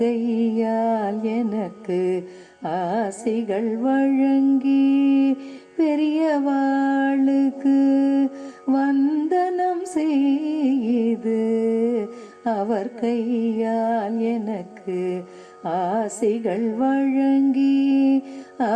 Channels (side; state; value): both; identical; correlation 1.00